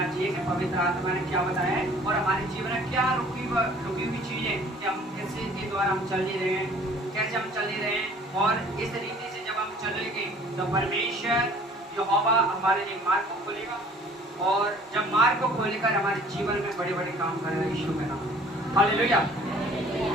चाहिए कि पवित्र आत्मा ने क्या बताया है और हमारे जीवन में क्या रुकी हुई चीजें कि हम कैसे के द्वारा हम चल ही रहे हैं, कैसे हम चल ही रहे हैं। और इस रीति से जब हम चलेंगे तो परमेश्वर यहोवा हमारे लिए मार्ग को खोलेगा, और जब मार्ग को खोलेकर हमारे जीवन में बड़े बड़े काम करेगा यीशु के नाम। हालेलुया।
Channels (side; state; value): both; normal; correlation 0.52